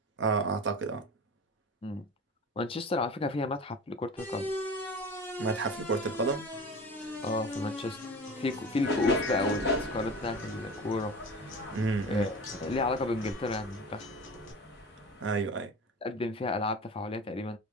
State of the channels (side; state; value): both; normal; correlation 0.34